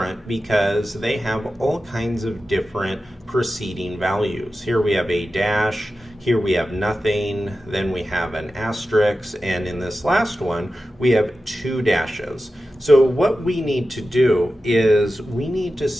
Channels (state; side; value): normal; both; correlation 0.93